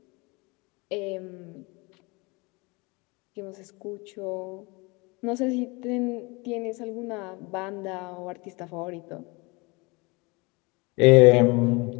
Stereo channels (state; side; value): quieter; right; 26.8 dB